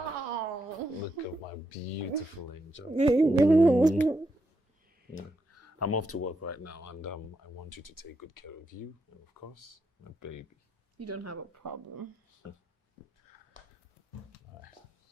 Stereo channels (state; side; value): normal; both; correlation 0.81